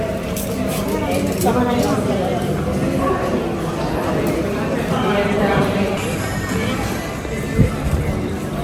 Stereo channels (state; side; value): identical; both; correlation 1.00